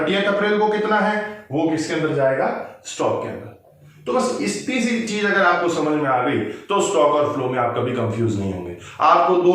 अप्रैल को कितना है, वो किसके अंदर जाएगा, स्टॉक के अंदर। तो बस इतनी सी चीज अगर आपको समझ में आ गई तो स्टॉक और फ्लो में आप कभी कंफ्यूज नहीं होंगे। आपको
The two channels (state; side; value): identical; both; correlation 1.00